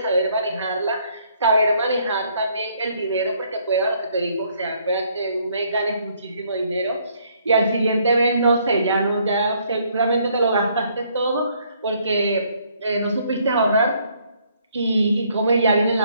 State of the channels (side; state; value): both; inverted; correlation -0.67